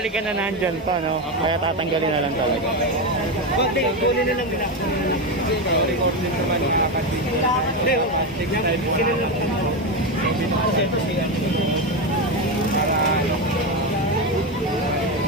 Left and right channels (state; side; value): normal; both; correlation 0.13